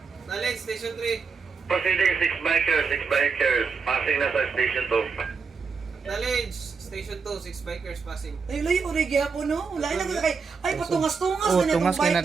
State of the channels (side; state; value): left; quieter; 5.2 dB